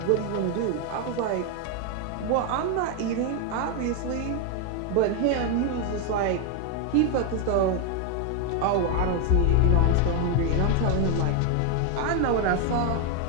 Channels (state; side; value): different; both; correlation 0.01